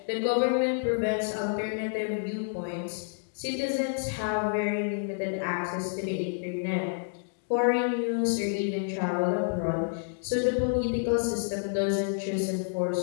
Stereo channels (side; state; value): right; silent; digital silence